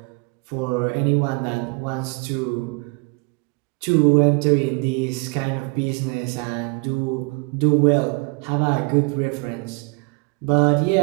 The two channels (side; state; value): left; quieter; 31.6 dB